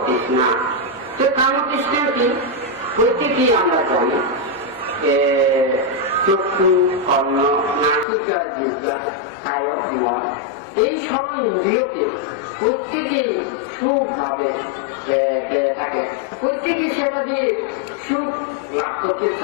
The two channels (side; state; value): right; drops out; at 8.1 s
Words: তৃষ্ণা। তো কাম তৃষ্ণা কি? প্রত্যেকেই আমরা জানি চক্ষু, কর্ণ, নাসিকা, জিহ্বা, কায়, মন, এই সব ইন্দ্রিয়কে প্রত্যেকেই সুখ ভাবে থাকে, প্রত্যেকেই সেটা দিয়ে সুখ লাভ করতে